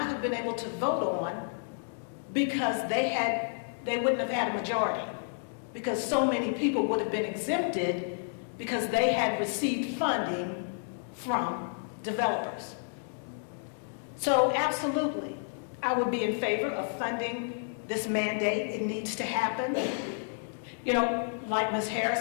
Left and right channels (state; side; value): silent; right; digital silence